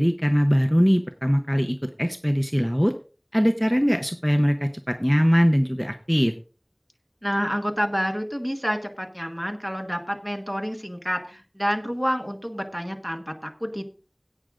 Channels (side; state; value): both; identical; correlation 1.00